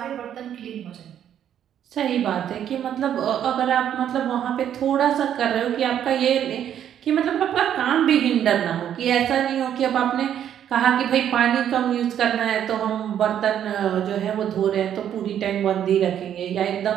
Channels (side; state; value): left; quieter; 9.9 dB